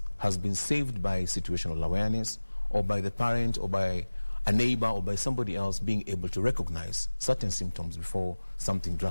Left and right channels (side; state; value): both; inverted; correlation -1.00